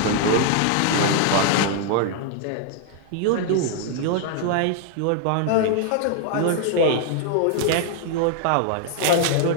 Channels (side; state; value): both; different; correlation 0.00